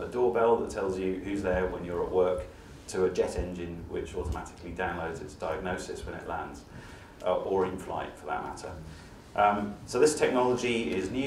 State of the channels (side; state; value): both; identical; correlation 1.00